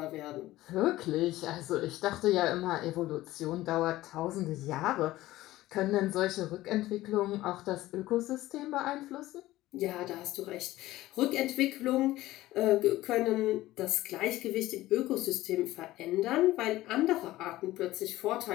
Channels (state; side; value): quieter; right; 16.5 dB